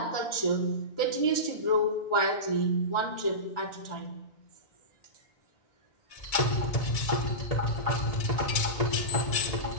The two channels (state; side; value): late; right; 2.2 ms